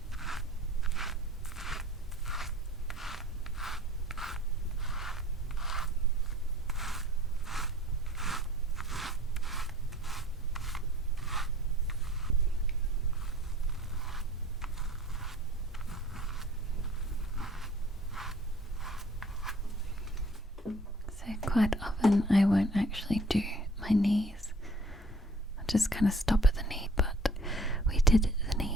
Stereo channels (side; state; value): both; normal; correlation 0.51